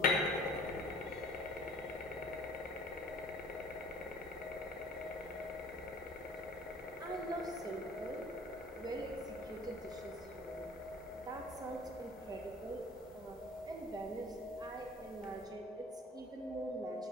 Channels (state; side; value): normal; both; correlation 0.50